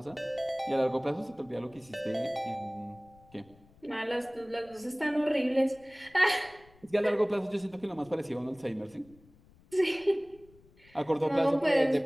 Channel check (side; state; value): left; noise; rumble, 27 dB below the sound